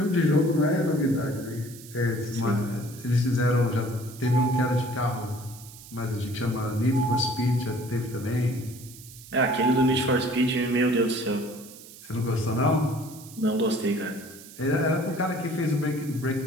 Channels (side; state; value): right; noise; hiss, 18 dB below the sound